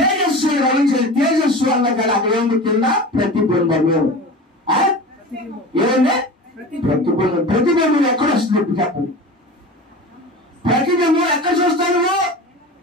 రవించారు. తేజస్సు అన్న కదా అక్కడ ఏమి కింద ప్రతిబింబము. ఏమంటే ప్రతిబింబం. ప్రతిబింబం ఎక్కడ వస్తుంది ఇప్పుడు చెప్పండి? ప్రతిబింబం ఎక్కడ చూస్తాను?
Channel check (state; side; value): normal; both; correlation 0.33